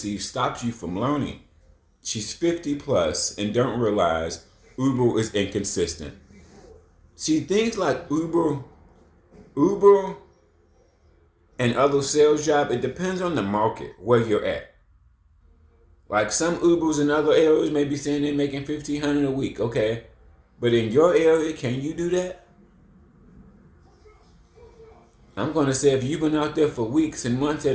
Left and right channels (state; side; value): identical; both; correlation 1.00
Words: stops you from learning. She's 50 plus and don't realize Uber is inconsistent. See things like Uber, and other sales job. It depends on the market where you're at. Like some Ubers in other areas may be saying they're making $1,500 a week. Okay, but in your area, can you do that? I'm gonna say if you've been out there for weeks and months